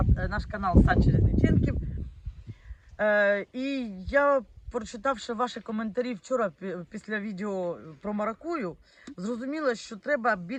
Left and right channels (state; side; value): identical; both; correlation 1.00